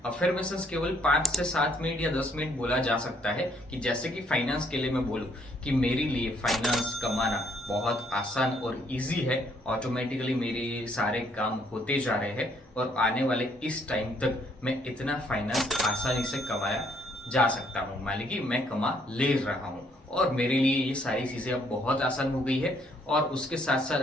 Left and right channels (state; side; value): normal; both; correlation 0.68